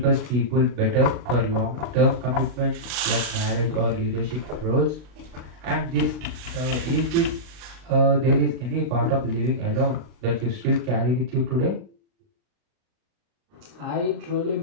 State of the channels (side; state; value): left; late; 40 ms